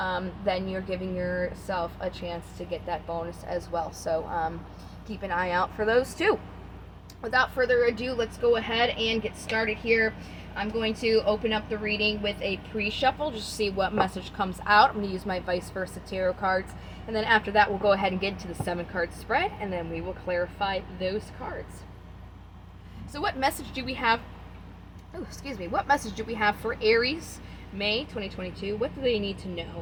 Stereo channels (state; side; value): identical; both; correlation 1.00